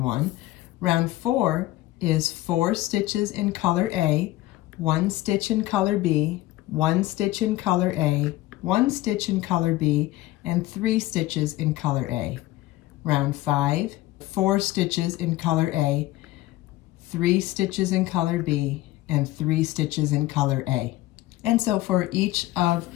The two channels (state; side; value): quieter; right; 17.0 dB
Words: 1. Round 4 is 4 stitches in color A, 1 stitch in color B, 1 stitch in color A, 1 stitch in color B, and 3 stitches in color A. Round 5, 4 stitches in color A, 3 stitches in color B, and 3 stitches in color A. And so for each of